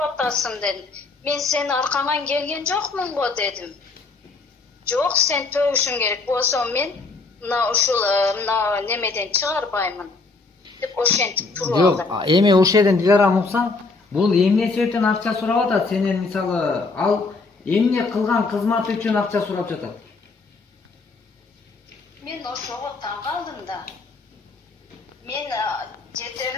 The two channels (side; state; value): right; quieter; 3.9 dB